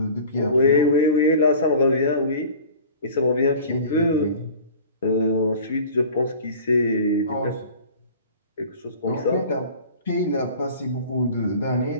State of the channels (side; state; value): both; inverted; correlation -0.42